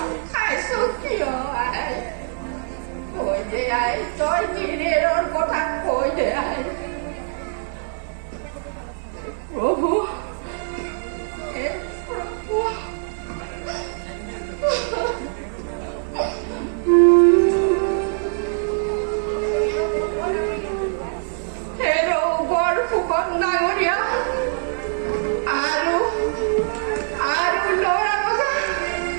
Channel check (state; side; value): silent; left; digital silence